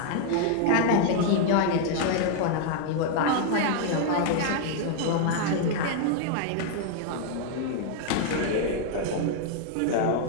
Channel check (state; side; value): different; both; correlation 0.00